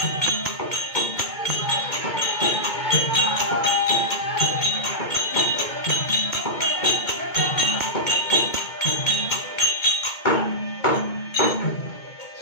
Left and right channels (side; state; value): right; late; 2.2 ms